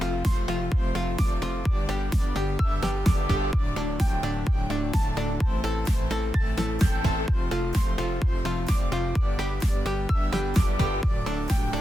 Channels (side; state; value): both; normal; correlation 0.89